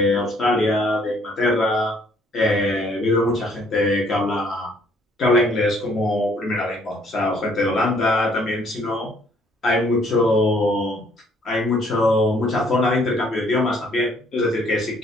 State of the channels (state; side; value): normal; both; correlation 0.63